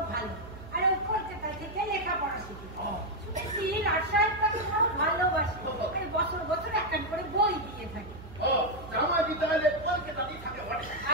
ভালো, আর ওই কলকাতা থেকে লেখাপড়া শিখে শুনেছি রাজশাহী তাকে বড় ভালোবাসে, বছর বছর একটা করে বই দিয়ে থাকে। ও জামাইটি তাহলে কলকাতাতেই থাকে বটে।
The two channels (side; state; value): right; noise; hum, 15 dB below the sound